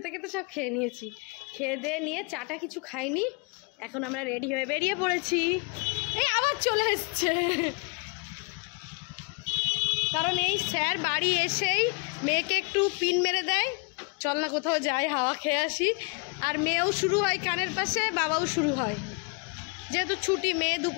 সব খেয়ে নিয়েছি। খেয়ে দিয়ে নিয়ে চাটা কিছু খাইনি, এখন আমরা রেডি হয়ে বেরিয়ে পড়েছি। এই আবার চলে এসছে, কারণ এই স্যার বাড়ি এসেই মেয়েকে একটু পিন মেরে দেয়, চল না কোথাও যাই, হাওয়া খেয়ে আসি। আর মেয়েও শুরু হয় কানের পাশে, বাবাও শুরু হয়, যেহেতু ছুটি। মেয়ে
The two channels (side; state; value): right; quieter; 33.2 dB